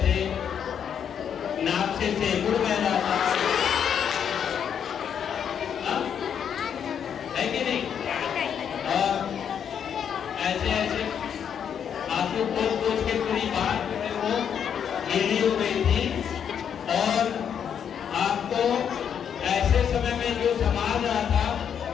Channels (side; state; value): right; quieter; 8.2 dB